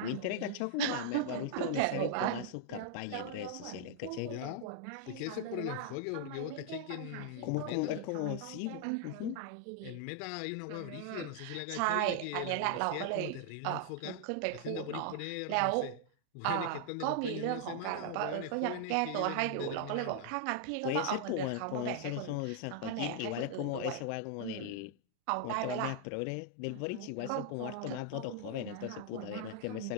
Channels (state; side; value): different; both; correlation -0.01